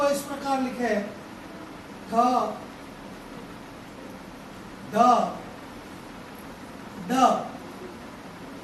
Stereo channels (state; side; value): identical; both; correlation 1.00